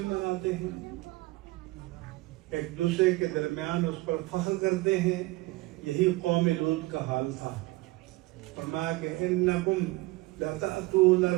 مناتے ہیں، ایک دوسرے کے درمیان اس پر فخر کرتے ہیں، یہی قوم لوط کا حال تھا۔ فرمایا کہ انکم لتأتون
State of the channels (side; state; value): left; quieter; 21.0 dB